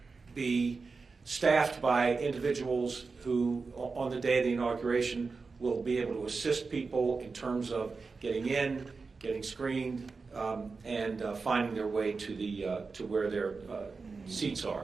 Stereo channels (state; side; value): quieter; left; 4.4 dB